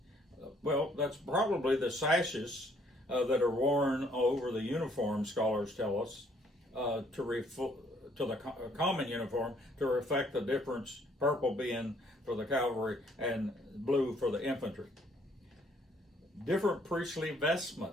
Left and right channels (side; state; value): both; normal; correlation 0.64